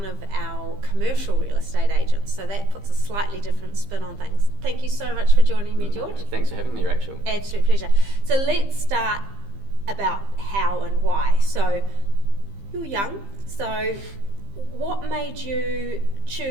of our commercial real estate agents, so that puts a slightly different spin on things. Thank you so much for joining me, George. Thanks for having me, Rachel. Absolute pleasure. So let's start about how and why. So you're young, so what made you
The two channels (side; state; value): left; late; 15 ms